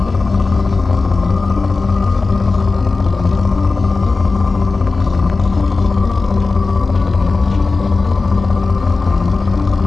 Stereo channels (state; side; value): quieter; right; 3.9 dB